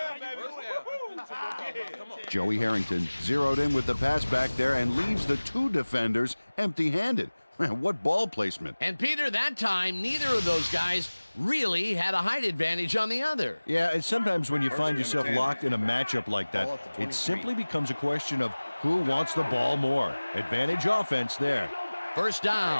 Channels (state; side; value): inverted; both; correlation -1.00